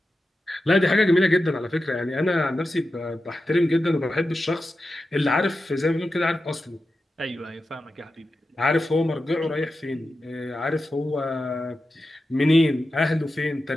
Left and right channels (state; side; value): normal; both; correlation 0.91